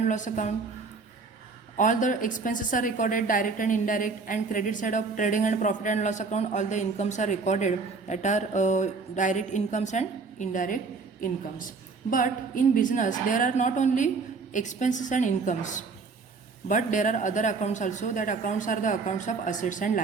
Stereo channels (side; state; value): left; quieter; 4.5 dB